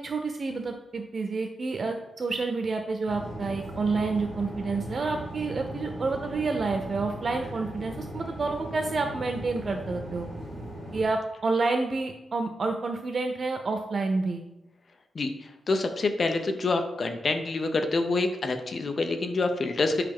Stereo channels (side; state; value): both; normal; correlation 0.86